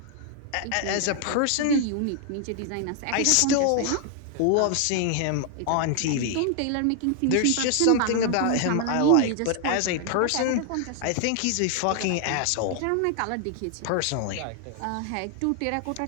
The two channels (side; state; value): both; different; correlation 0.00